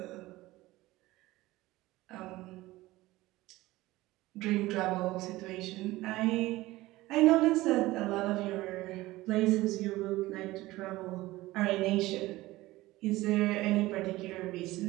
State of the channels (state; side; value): quieter; left; 18.3 dB